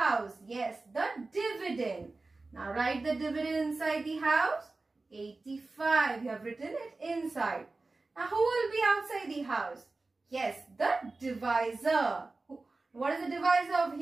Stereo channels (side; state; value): left; quieter; 3.5 dB